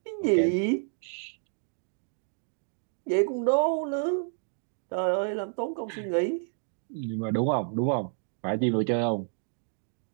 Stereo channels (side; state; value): left; silent; digital silence